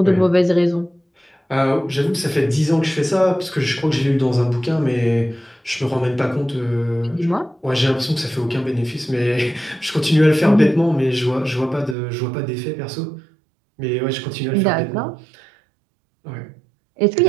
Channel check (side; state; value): left; drops out; at 12.0 s